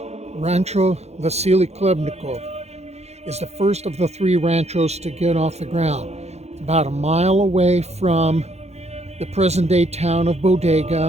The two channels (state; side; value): late; left; 0.31 ms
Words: Rancho Vasily Klebnikov is the first of the 3 ranchos to get off the ground. About a mile away from the present-day town of